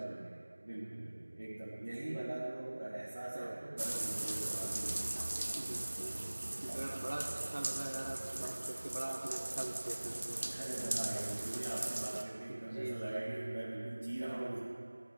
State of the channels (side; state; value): both; inverted; correlation -1.00